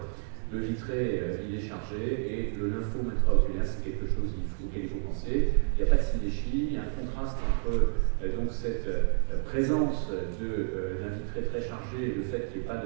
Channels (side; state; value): left; silent; digital silence